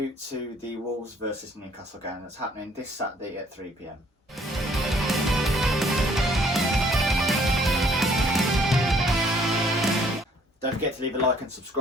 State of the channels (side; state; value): both; normal; correlation 0.61